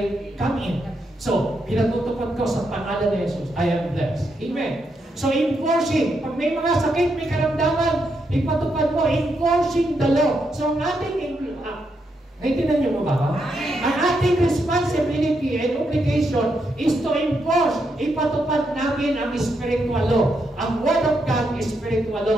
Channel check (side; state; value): both; normal; correlation 0.81